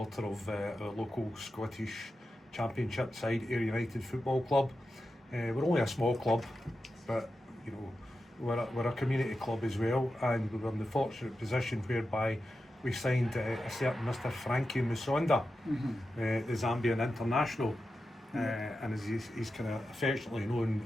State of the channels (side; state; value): both; normal; correlation 0.91